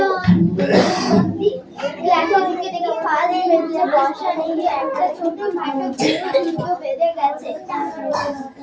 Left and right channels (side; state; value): both; identical; correlation 1.00